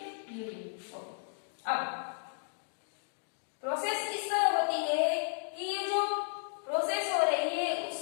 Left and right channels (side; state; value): right; silent; digital silence